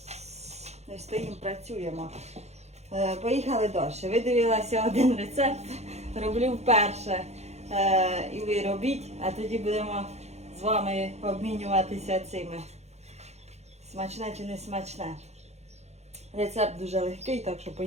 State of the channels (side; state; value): left; late; 0.32 ms